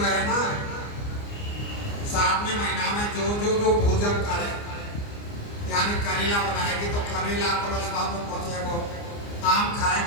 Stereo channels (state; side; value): late; right; 29 ms